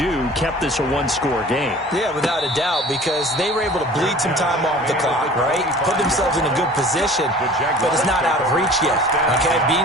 kept this a 1-score game. Yeah, without a doubt, because they were able to bleed some time off the clock, right? Put themselves in a good position, but it's not out of reach yet, okay?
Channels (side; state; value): both; normal; correlation 0.45